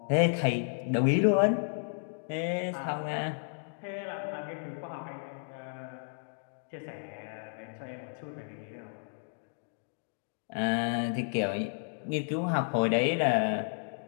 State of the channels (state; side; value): silent; right; digital silence